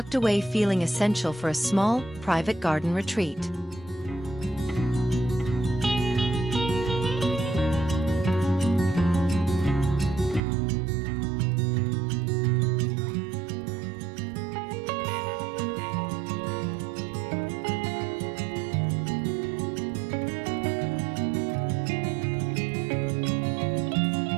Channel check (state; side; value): drops out; left; at 10.4 s